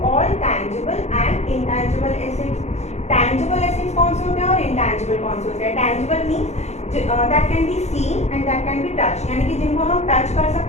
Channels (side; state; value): right; late; 0.32 ms